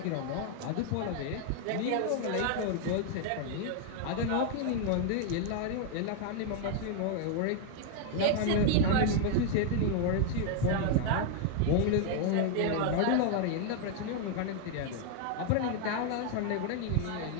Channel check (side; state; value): both; different; correlation 0.00